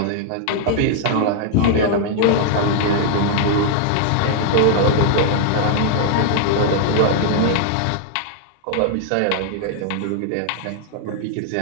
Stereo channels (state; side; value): different; both; correlation 0.00